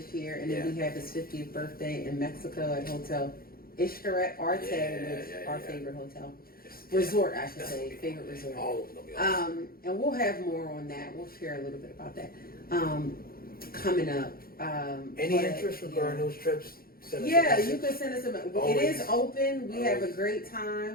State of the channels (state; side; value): late; right; 0.43 ms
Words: year, and then we have his 50th birthday in Mexico at Hotel Ishtaret Arte, which is our favorite hotel. Resort, I should say, favorite resort. All of them will be awesome. And we'll have more on that. We'll share a little bit about that coming up. Any interest regarding those trips? You can send us a message. It is open. We have a great